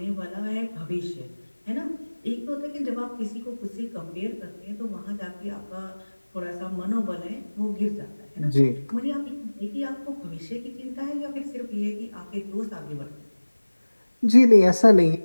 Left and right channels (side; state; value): both; inverted; correlation -1.00